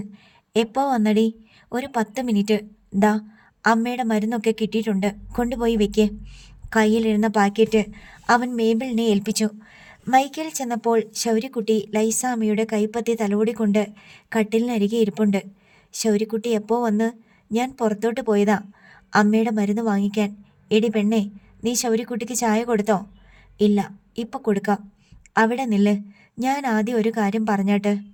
എപ്പോ വന്നടി? ഒരു 10 മിനിറ്റ്. ദാ അമ്മയുടെ മരുന്നൊക്കെ കിട്ടിയിട്ടുണ്ട്, കൊണ്ടുപോയി വെക്കേ. കയ്യിലിരുന്ന പാക്കറ്റ് അവൻ മേബിളിനെ ഏൽപ്പിച്ചു. മൈക്കേൽ ചെന്നപ്പോൾ ശൗര്യക്കുട്ടി ലൈസാമ്മയുടെ കൈപ്പത്തി തലോടിക്കൊണ്ട് കട്ടിലിനരികെ ഇരിപ്പുണ്ട്. ശൗര്യക്കുട്ടി എപ്പോ വന്ന്? ഞാൻ പുറത്തോട്ട് പോയതാ അമ്മയുടെ മരുന്ന് വാങ്ങിക്കാൻ. എടി പെണ്ണേ, നീ ശൗര്യക്കുട്ടിക്ക് ചായ കൊടുത്തോ? ഇല്ല, ഇപ്പം കൊടുക്കാം. അവിടെ നില്ല്, ഞാൻ ആദ്യം ഒരു കാര്യം പറഞ്ഞാട്ട്.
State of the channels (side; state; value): both; identical; correlation 1.00